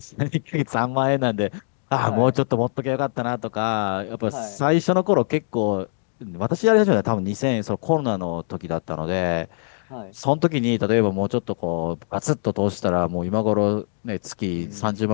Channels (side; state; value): right; silent; digital silence